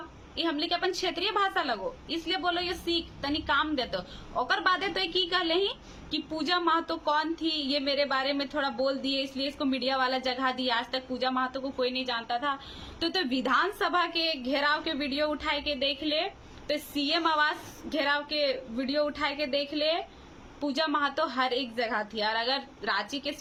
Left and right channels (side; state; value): both; identical; correlation 1.00